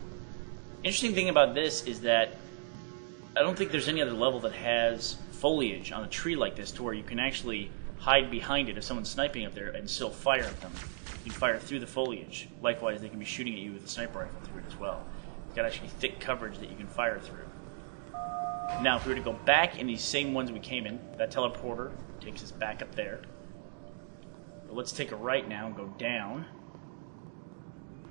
Interesting thing about this is that I don't think there's any other level that has foliage on a tree like this to where you can actually hide behind it if someone's sniping up there and still fire at them. You can fire through the foliage. Likewise, they can be shooting at you with a sniper rifle through it as well. It's got actually thick coverage that you can fire through. Now, if we were to go back in these same ones we came in, that teleporter takes us back up there. But let's take a right now and go down.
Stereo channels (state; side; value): silent; left; digital silence